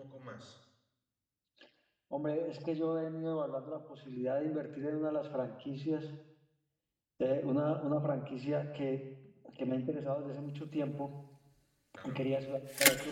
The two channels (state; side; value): identical; both; correlation 1.00